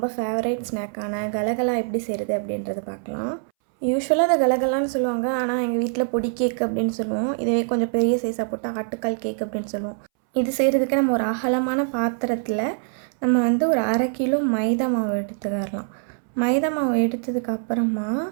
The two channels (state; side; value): silent; left; 63 dB below the other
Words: ஃபேவரேட் ஸ்நாக்கான கலகலா எப்படி செய்கிறது அப்படின்றத பார்க்கலாம். யூஸ்வலாக அதை கலகலான்னு சொல்லுவாங்க, ஆனால் எங்கள் வீட்டில் பொடி கேக் அப்படின்னு சொல்லுவோம். இதே கொஞ்சம் பெரிய சைஸாக போட்டால் ஆட்டுக்கால் கேக் அப்படின்னு சொல்லுவோம். இது செய்கிறதுக்கு நம்ம ஒரு அகலமான பாத்திரத்தில் நம்ம ஒரு 1/2 கிலோ மைதா மாவு எடுத்துக்கலாம். மைதா மாவு எடுத்ததுக்கு அப்புறமா